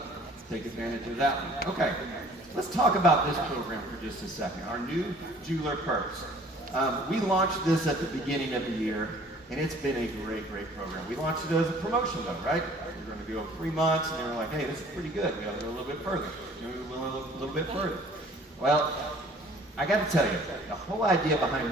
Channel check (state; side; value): normal; both; correlation 0.53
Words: take advantage of that one. Okay, let's talk about this program for just a second, our new Jeweler Perks. We launched this at the beginning of the year, and it's been a great, great program. We launched it as a promotion though, right? We're going to go 3 months, and they were like, hey, this is pretty good, we got to go a little bit further. We went a little bit further. Well, I got to tell you, the whole idea behind